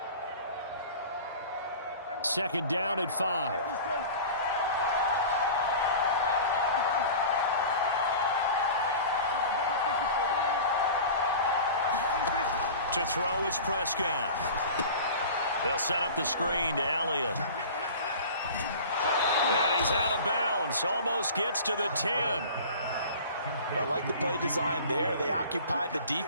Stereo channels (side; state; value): both; inverted; correlation -0.38